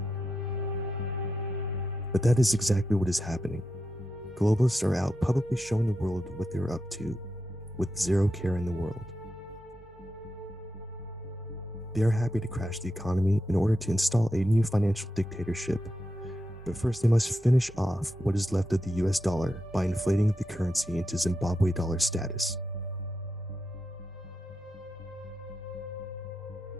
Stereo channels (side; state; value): both; normal; correlation 0.87